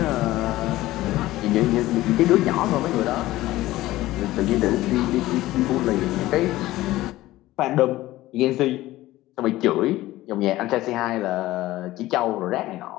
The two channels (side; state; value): right; quieter; 16.6 dB